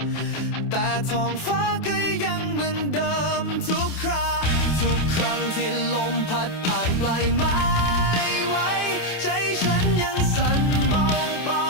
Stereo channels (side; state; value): right; late; 27 ms